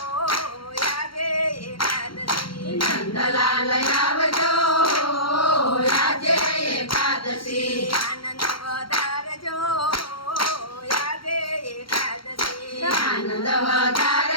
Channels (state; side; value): late; right; 0.73 ms